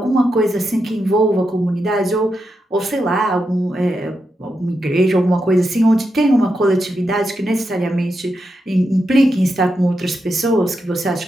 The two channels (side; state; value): both; normal; correlation 0.86